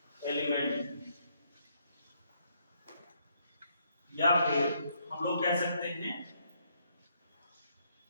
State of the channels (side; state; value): both; inverted; correlation -0.72